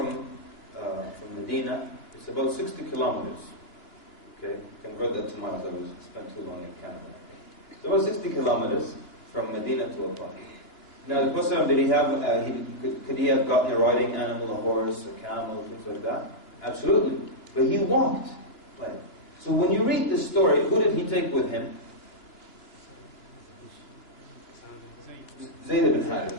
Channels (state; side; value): late; right; 2.9 ms